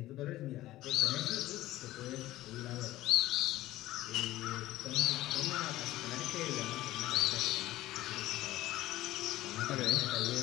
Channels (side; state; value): right; quieter; 15.9 dB